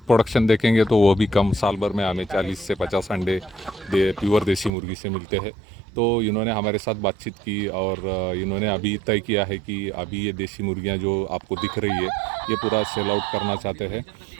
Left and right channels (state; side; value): drops out; left; at 4.7 s